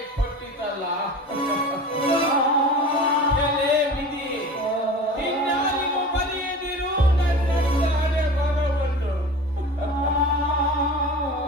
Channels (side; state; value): both; normal; correlation 0.36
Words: ಕೊಟ್ಟಿತಲ್ಲ. ಎಲೆ ವಿಧಿ, ಇನ್ನಾರಿಗೂ ಬರೆಯದಿರು ನನ್ನ ಹಣೆ ಬರವನ್ನು.